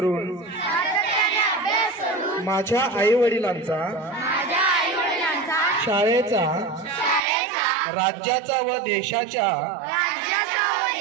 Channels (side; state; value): left; drops out; at 7.2 s